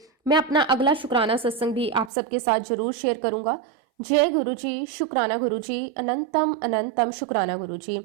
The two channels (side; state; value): left; drops out; at 2.1 s